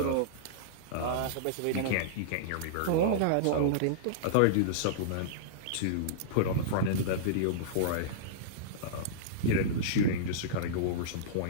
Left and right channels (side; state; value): both; different; correlation -0.03